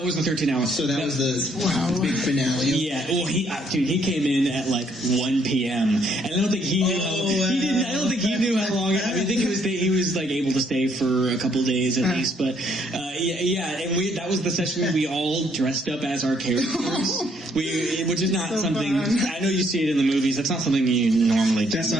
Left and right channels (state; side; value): normal; both; correlation 0.68